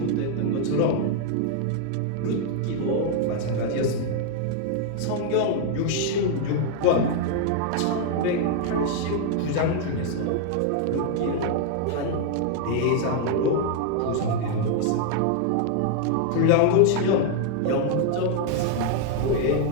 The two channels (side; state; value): both; different; correlation 0.00